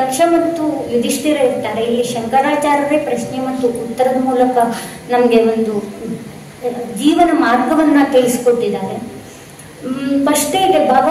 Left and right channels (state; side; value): identical; both; correlation 1.00